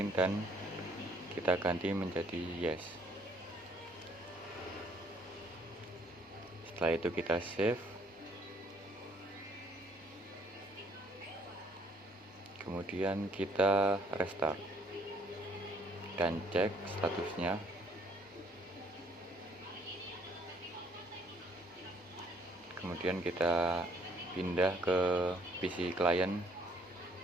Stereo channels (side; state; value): both; normal; correlation 0.63